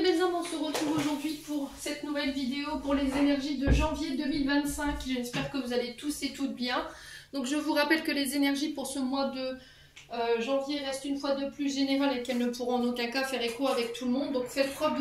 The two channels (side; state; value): both; identical; correlation 1.00